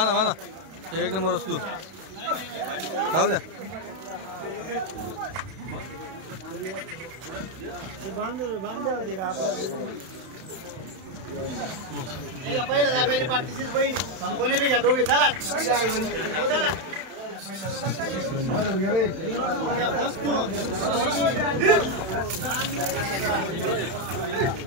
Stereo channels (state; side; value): late; left; 31 ms